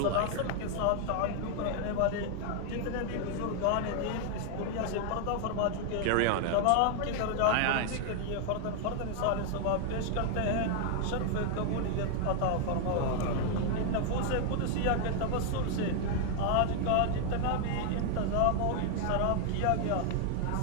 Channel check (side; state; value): both; different; correlation 0.00